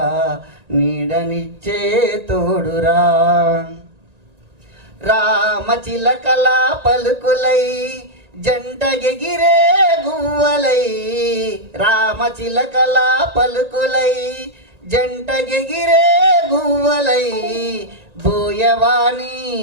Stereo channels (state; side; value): late; left; 1.9 ms